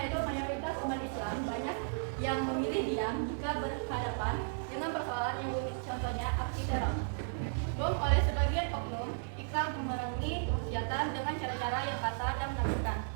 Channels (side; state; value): left; silent; digital silence